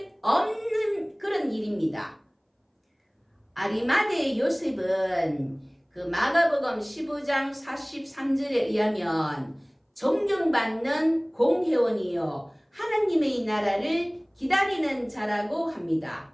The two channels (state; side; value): identical; both; correlation 1.00